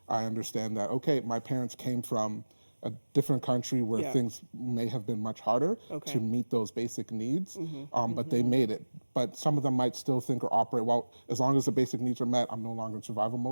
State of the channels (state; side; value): inverted; both; correlation -1.00